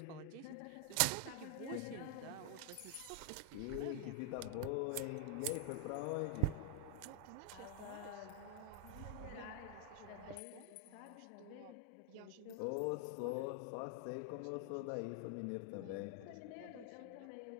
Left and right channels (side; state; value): both; different; correlation 0.00